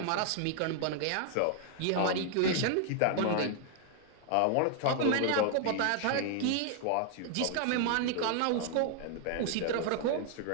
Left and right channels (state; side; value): different; both; correlation 0.00